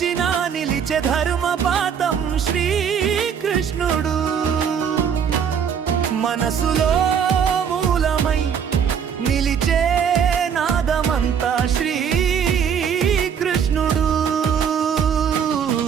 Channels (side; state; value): left; quieter; 7.6 dB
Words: నిలిచే ధర్మపాతం శ్రీకృష్ణుడు. మనసులో మూలమై నిలిచే నాదమంతా శ్రీకృష్ణుడు.